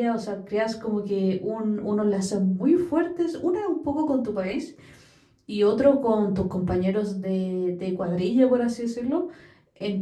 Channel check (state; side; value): identical; both; correlation 1.00